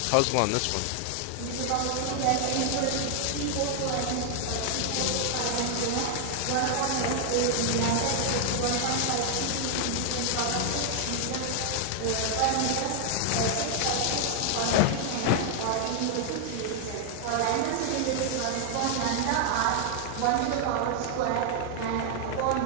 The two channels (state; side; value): different; both; correlation 0.00